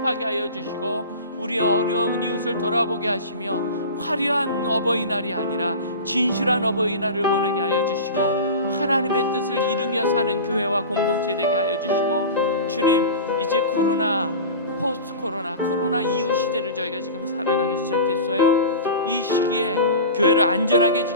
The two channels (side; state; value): both; inverted; correlation -0.33